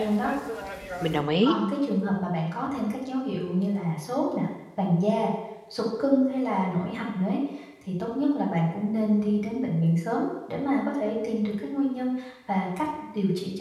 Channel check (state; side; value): identical; both; correlation 1.00